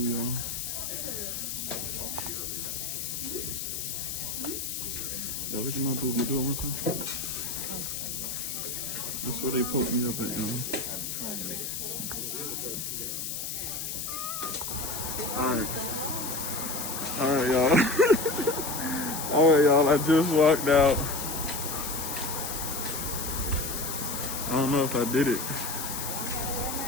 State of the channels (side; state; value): left; noise; hiss, 4 dB below the sound